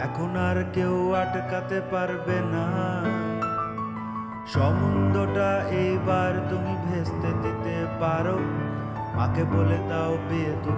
এখন আর কেউ আটকাতে পারবে না। সম্বন্ধটা এইবার তুমি ভেস্তে দিতে পারো, মাকে বলে দাও বিয়ে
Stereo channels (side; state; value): both; identical; correlation 1.00